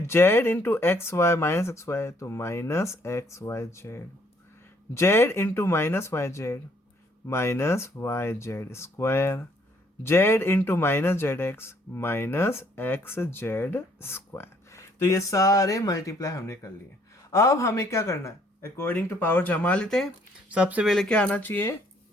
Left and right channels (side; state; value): both; normal; correlation 0.65